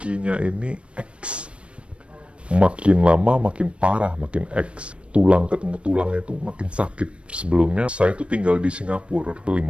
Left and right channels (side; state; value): left; late; 0.059 ms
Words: ini X. Makin lama makin parah, makin X. Tulang ketemu tulangnya itu makin sakit. Sebelumnya saya itu tinggal di Singapura 15